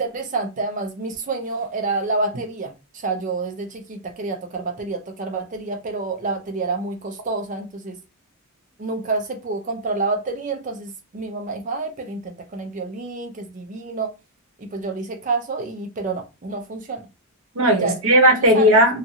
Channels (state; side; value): normal; both; correlation -0.16